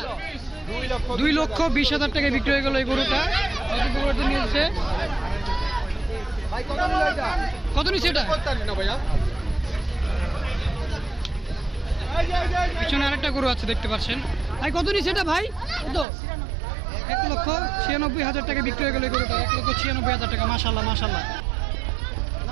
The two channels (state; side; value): drops out; left; at 16.1 s